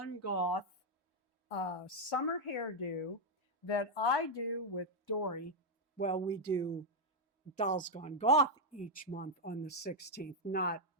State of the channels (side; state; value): both; normal; correlation 0.00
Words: Goth summer hairdo that I do with Dory. Well, we do Dolls Gone Goth each month on the 16th, not